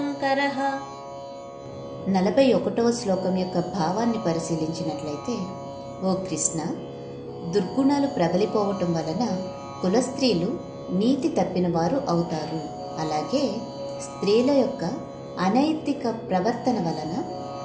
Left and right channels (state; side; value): identical; both; correlation 1.00